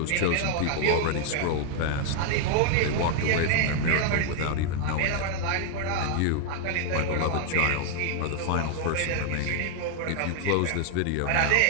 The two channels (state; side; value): different; both; correlation 0.00